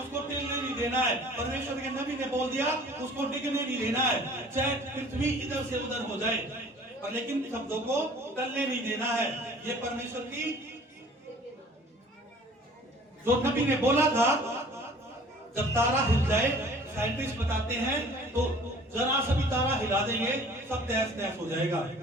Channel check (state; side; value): normal; both; correlation 0.49